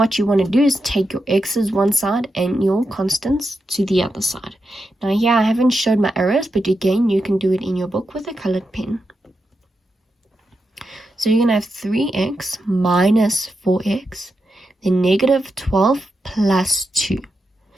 you want to do is take your x's one side and your constants to the other side. Now here I haven't showed my arrows, but again you can do it in your book with a colored pen. So you're going to have 3x minus 4x, then negative 12 plus 2.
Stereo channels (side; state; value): both; normal; correlation 0.87